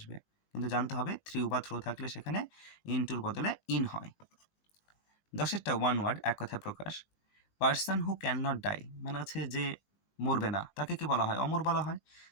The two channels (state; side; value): late; right; 19 ms